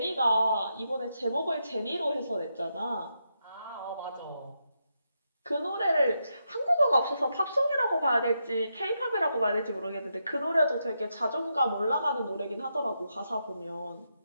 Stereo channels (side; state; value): both; inverted; correlation -0.83